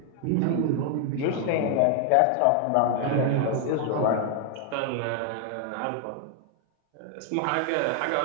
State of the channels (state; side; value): different; both; correlation 0.00